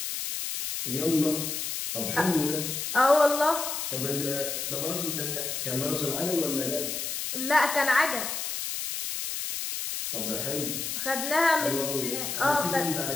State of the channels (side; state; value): left; noise; hiss, 3 dB below the sound